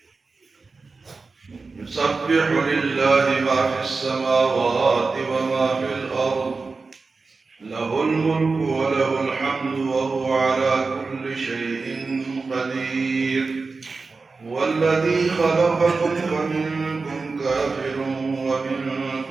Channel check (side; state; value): left; quieter; 4.1 dB